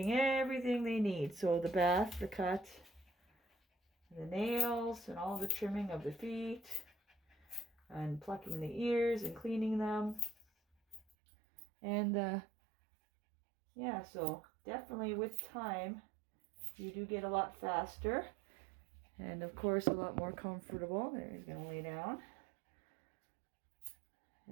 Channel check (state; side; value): drops out; left; at 11.0 s